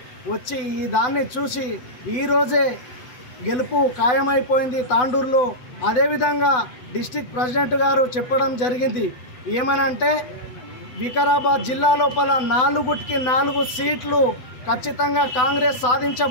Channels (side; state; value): right; late; 7.9 ms